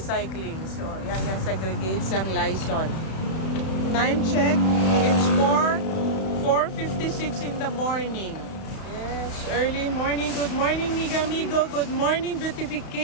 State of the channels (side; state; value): right; late; 32 ms